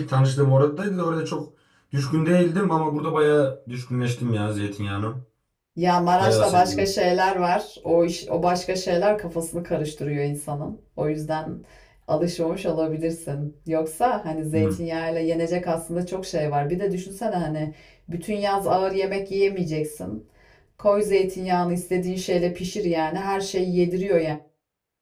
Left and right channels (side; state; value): both; identical; correlation 1.00